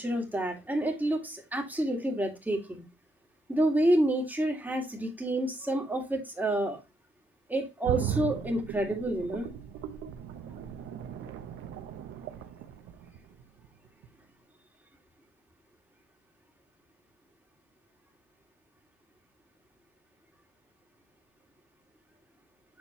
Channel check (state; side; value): normal; both; correlation 0.77